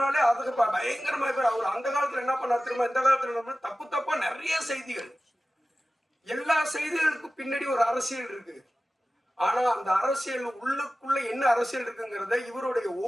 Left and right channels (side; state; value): both; normal; correlation 0.96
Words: அதுக்கு பயங்கரமா பேர். அவர் அந்த காலத்துல என்ன பண்ணார் தெரியுமா, இந்த காலத்துல தப்பா நிறைய செய்திகள், எல்லா செய்திகளுக்கும் பின்னாடி ஒரு அரசியல் இருக்கு. ஆனா அந்த அரசியல் உள்ளுக்குள்ள என்ன அரசியல் இருக்குங்கிறத இவருடைய